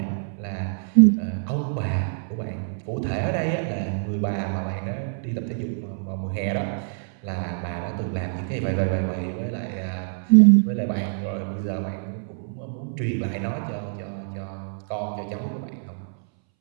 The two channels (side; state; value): left; silent; 61 dB below the other